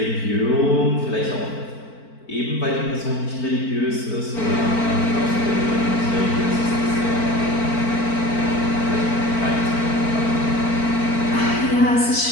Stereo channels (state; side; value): late; right; 4.5 ms